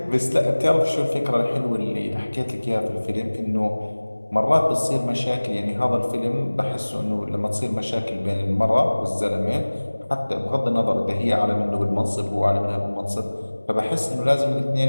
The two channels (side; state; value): both; inverted; correlation -1.00